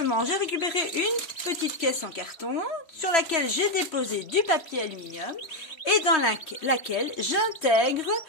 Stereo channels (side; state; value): right; late; 3.1 ms